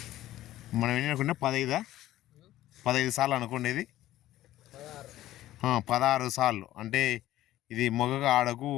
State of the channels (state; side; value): quieter; right; 14.6 dB